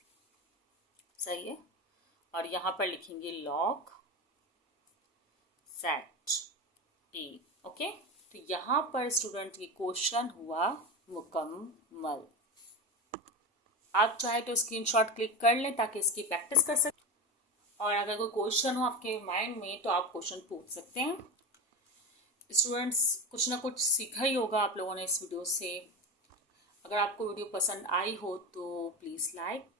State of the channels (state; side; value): normal; both; correlation 0.22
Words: सही है, और यहाँ पर लिखेंगे log z a। ओके, तो यहाँ पर स्टूडेंट की क्वेश्चन हुआ मुकम्मल। आप चाहे तो स्क्रीनशॉट क्लिक कर लें ताकि इसकी प्रैक्टिस कर सकें, और अगर कोई क्वेश्चन हो आपके माइंड में तो आप क्वेश्चन पूछ सकते हैं। स्टूडेंट्स, कुछ ना कुछ सीखा ही होगा आप लोगों ने इस वीडियो से। अगर आपको वीडियो पसंद आई हो तो प्लीज़ लाइक,